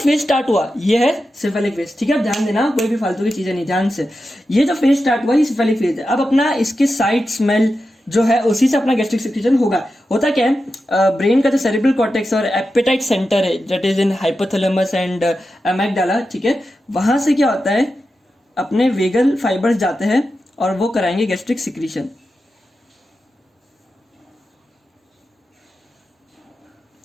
स्टार्ट हुआ ये है सिफेलिक फेज, ठीक है। अब ध्यान देना, कोई भी फालतू की चीज़ें नहीं, ध्यान से। ये जो फेज स्टार्ट हुआ ये सिफेलिक फेज है। अब अपना इसके साइड स्मेल जो है उसी से अपना गैस्ट्रिक सिक्रीशन होगा। होता क्या है, ब्रेन का जो सेरेब्रल कॉर्टेक्स और एपेटाइट सेंटर है that is in hypothalamus and amygdala, ठीक है, वहां से क्या होता है अपने वेगल फाइबर्स जाते हैं और वो कराएंगे गैस्ट्रिक सिक्रीशन।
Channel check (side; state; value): both; normal; correlation 0.90